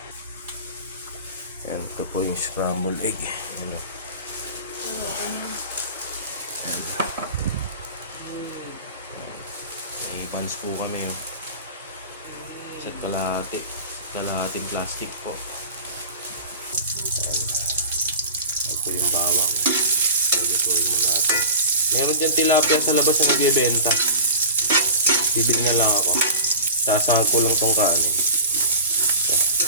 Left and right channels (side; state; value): both; inverted; correlation -0.36